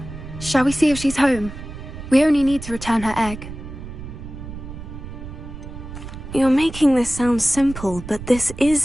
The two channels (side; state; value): right; noise; rumble, 11 dB below the sound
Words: Shall we see if she's home? We only need to return her egg. You're making this sound simple, but this